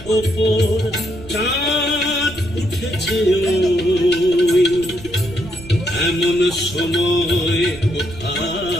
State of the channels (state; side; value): noise; right; rumble, 16 dB below the sound